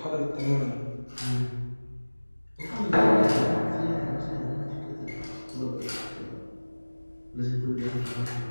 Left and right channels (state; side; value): inverted; both; correlation -1.00